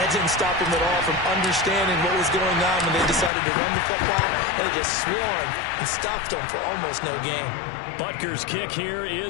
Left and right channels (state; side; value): drops out; right; at 3.3 s